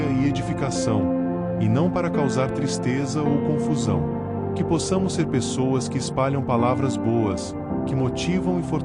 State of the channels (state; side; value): identical; both; correlation 1.00